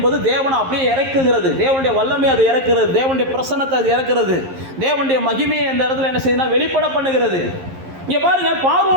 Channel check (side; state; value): left; late; 11 ms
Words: தேவனை அப்படியே இறக்குகிறது, தேவனுடைய வல்லமை அது இறக்குறது, தேவனுடைய பிரசன்னத்தை அது இறக்குறது, தேவனுடைய மகிமையை அந்த இடத்துல என்ன செய்யுதுன்னா வெளிப்பட பண்ணுகிறது. இங்கே பாருங்க,